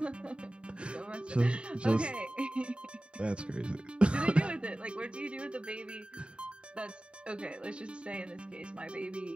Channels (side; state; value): left; late; 0.055 ms